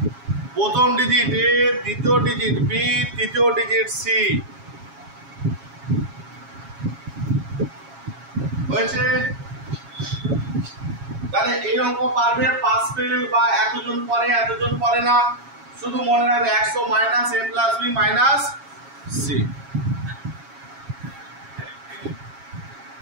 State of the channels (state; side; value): late; left; 7.3 ms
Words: প্রথম ডিজিট এ, দ্বিতীয় ডিজিট বি, তৃতীয় ডিজিট সি। হয়েছে? তাহলে এই অঙ্ক পারবে, পাস ফেল বা এতজন পড়ে এতজন পড়ে না, শুধু মনে রাখবে 100 মাইনাস এ প্লাস বি মাইনাস সি।